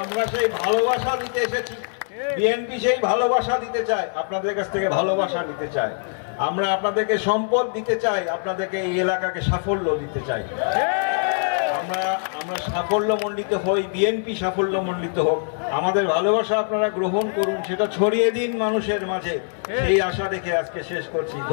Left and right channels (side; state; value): right; silent; 63 dB below the other